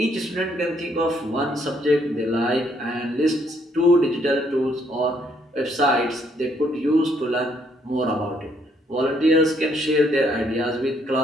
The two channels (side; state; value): both; normal; correlation 0.69